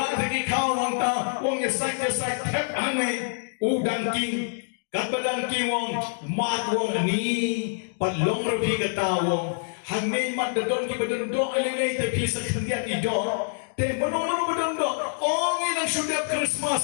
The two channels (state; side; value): silent; right; digital silence